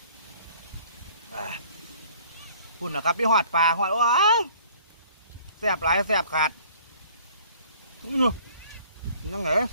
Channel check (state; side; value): inverted; both; correlation -0.54